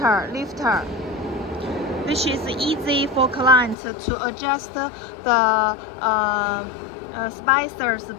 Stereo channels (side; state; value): right; drops out; at 3.8 s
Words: which is easy for clients to adjust the spacers